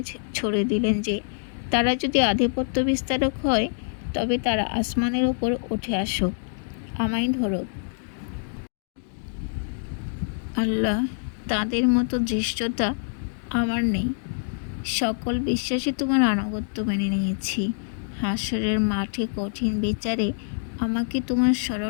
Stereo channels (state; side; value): silent; right; digital silence